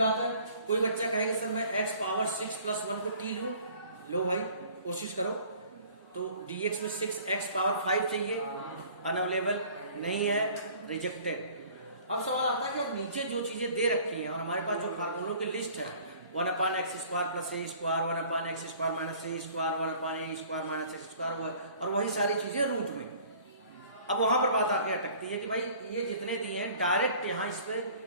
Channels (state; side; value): inverted; both; correlation -0.51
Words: है, कोई बच्चा कहेगा सर मैं x पावर 6 प्लस 1 को t लूं, लो भाई कोशिश करो। तो dx में 6x पावर 5 चाहिए, अनअवेलेबल नहीं है, रिजेक्टेड। अब सवाल आता है कि अब नीचे जो चीजें दे रखी हैं और हमारे पास जो फार्मूलों की लिस्ट है 1/x square plus a square, 1/x square minus a square, 1/a square minus x square, और वही सारी चीजें रूट में। अब वहां पर बात आके अटकती है कि भाई ये जितने दिए हैं डायरेक्ट यहाँ इस पे